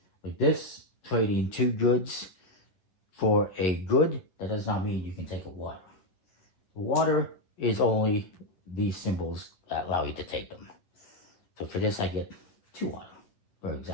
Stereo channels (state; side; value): late; right; 11 ms